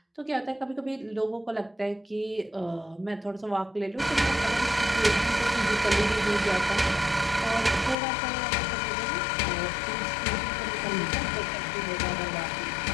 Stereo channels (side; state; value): right; drops out; at 8.0 s